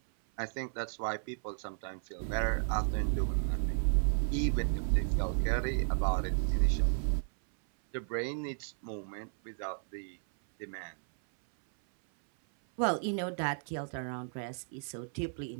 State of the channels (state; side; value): silent; left; 55 dB below the other